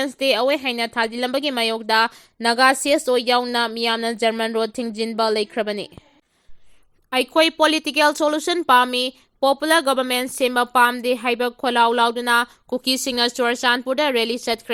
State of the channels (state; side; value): identical; both; correlation 1.00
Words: stay away haina thadilambagi mayokda naga CSO yauna miyamna German Road thingjinba leikrabani Aikhoi political solution pami popular government sema pamde haiba kholau lauduna Kuki singa Churachandpur da rally